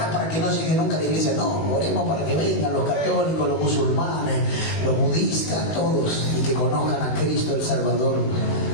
para que no llegue nunca a la iglesia. No, oremos para que vengan los católicos, los musulmanes, los budistas, todos, y que conozcan a Cristo el Salvador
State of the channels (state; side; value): late; right; 19 ms